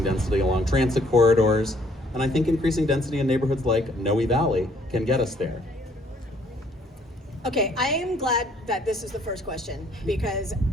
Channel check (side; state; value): both; normal; correlation 0.63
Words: density along transit corridors, and I think increasing density in neighborhoods like Noe Valley can get us there. Okay, I am glad that this is the first question, because